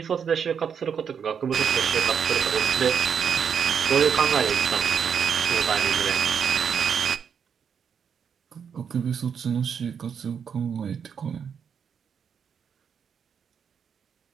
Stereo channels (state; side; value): quieter; left; 7.2 dB